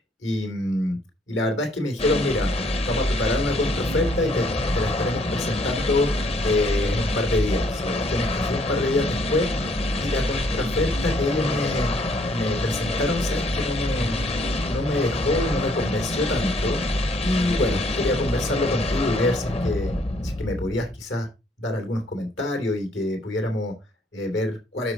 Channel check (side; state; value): both; normal; correlation 0.65